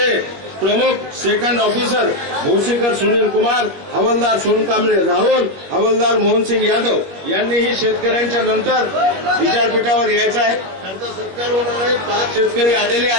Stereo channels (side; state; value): left; late; 21 ms